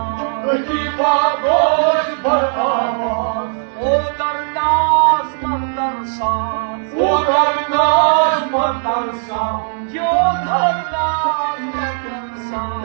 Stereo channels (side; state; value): left; silent; digital silence